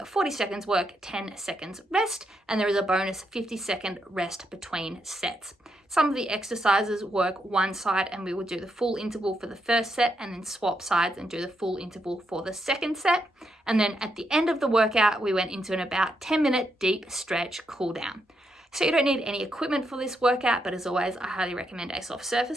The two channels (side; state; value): both; normal; correlation 0.80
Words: 40 seconds work, 10 seconds rest, and there is a bonus 50-second rest between sets. Some of the exercises work one side and we will do the full interval for the first set and then swap sides and do the full interval for the second set. And then at the end of the workout, we went into an about 10-minute deep stretch cool down. So you don't need any equipment for this workout, but as always, I highly recommend a soft surface